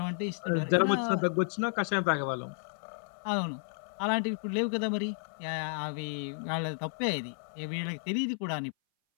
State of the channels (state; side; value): silent; right; 56 dB below the other